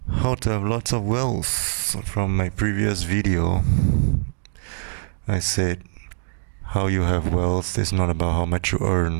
How to Have Lots of Wealth. From my previous video, I said how you have wealth is not about how much you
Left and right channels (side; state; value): left; silent; 57 dB below the other